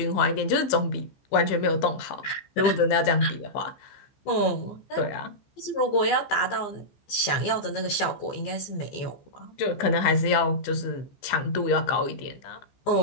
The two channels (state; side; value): late; right; 14 ms